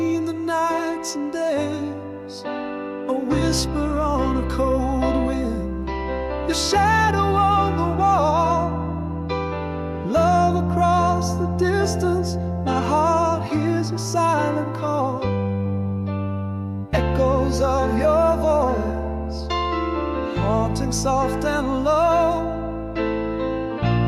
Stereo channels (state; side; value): identical; both; correlation 1.00